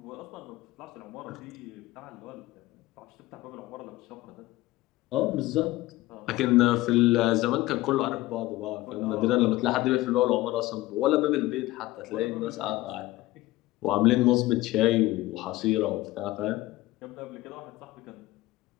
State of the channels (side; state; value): right; quieter; 18.0 dB